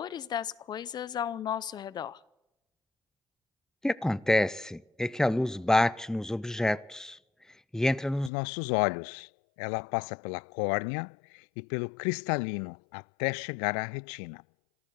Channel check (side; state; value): right; drops out; at 8.3 s